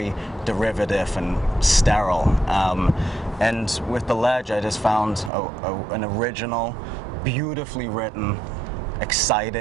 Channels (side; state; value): left; drops out; at 5.3 s